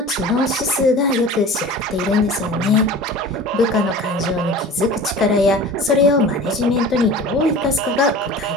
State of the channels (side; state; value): both; normal; correlation 0.39